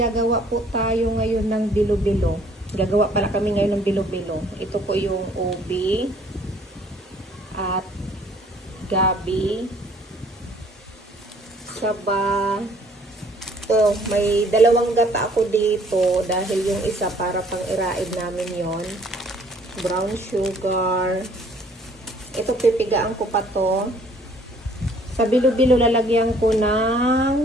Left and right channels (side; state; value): both; normal; correlation 0.59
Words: po tayo ngayon ng bilo-bilo. Gagawa pala kami ngayon ng bilo-bilo. Ito po yung ubi at gabi, saba. Oh, may dalawang gata ako dito dahil yung isa para pang iraid namin yon. Brown sugar. Ito pipigaan ko pa to. Sa bilo-bilo lalagyan ko